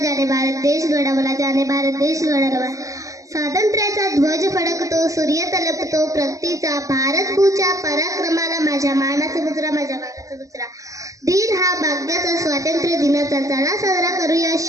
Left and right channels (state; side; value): late; left; 0.16 ms